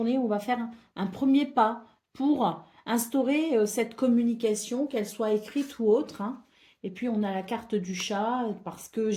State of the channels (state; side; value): identical; both; correlation 1.00